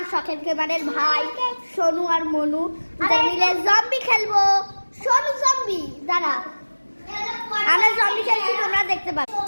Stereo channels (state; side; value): inverted; both; correlation -1.00